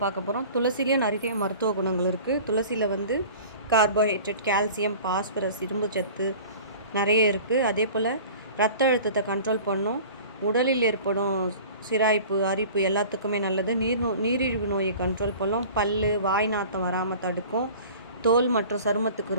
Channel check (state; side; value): inverted; both; correlation -0.42